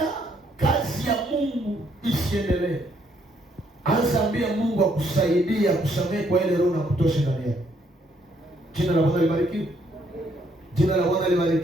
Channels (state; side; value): normal; both; correlation 0.70